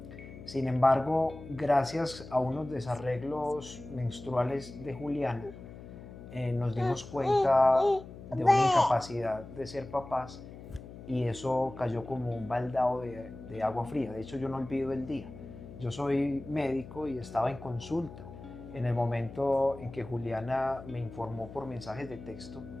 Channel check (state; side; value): noise; left; hum, 15 dB below the sound